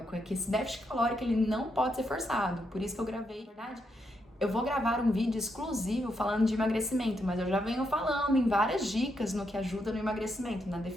é que esse déficit calórico ele não pode ser forçado, por isso que eu gravei, na verdade, eu vou gravar um vídeo exclusivo falando de emagrecimento, mas eu já venho falando em várias dicas no que ajuda no emagrecimento, na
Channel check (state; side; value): normal; both; correlation 0.80